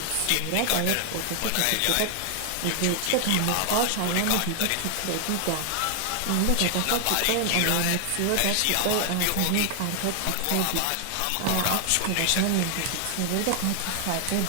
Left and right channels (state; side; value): different; both; correlation 0.00